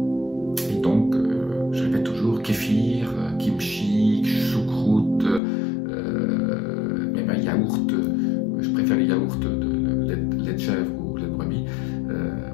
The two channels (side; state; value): right; drops out; at 5.4 s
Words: Et donc, je répète toujours, kéfir, kimchi, choucroute, même un yaourt. Je préfère les yaourts de lait de chèvre ou lait de brebis.